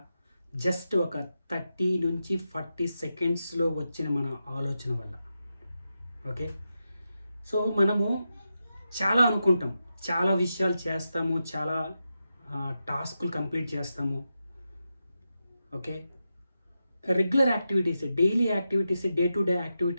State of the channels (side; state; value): both; inverted; correlation -0.88